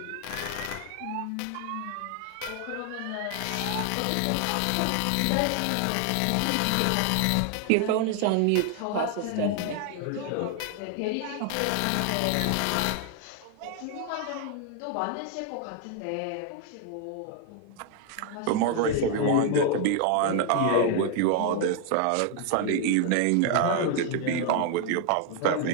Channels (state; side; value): different; both; correlation 0.00